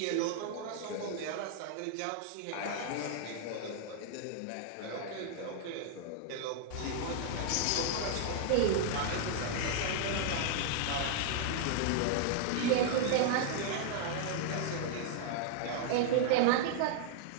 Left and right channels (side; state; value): both; different; correlation 0.00